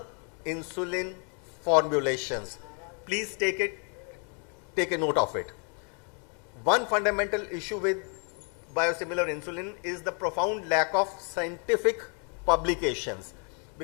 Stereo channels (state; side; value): quieter; right; 36.4 dB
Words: insulin formulations. Please take a note of it. One fundamental issue with biosimilar insulin is the profound lack of scientific publications,